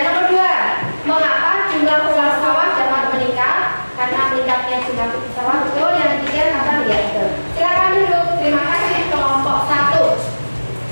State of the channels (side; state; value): both; inverted; correlation -1.00